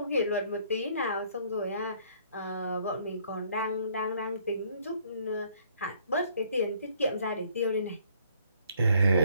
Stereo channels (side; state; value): both; inverted; correlation -0.63